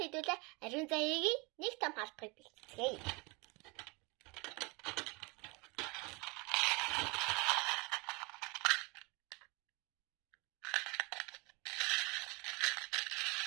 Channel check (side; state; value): left; quieter; 28.0 dB